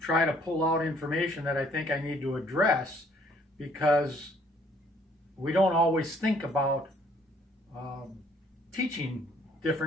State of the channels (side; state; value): both; normal; correlation 0.62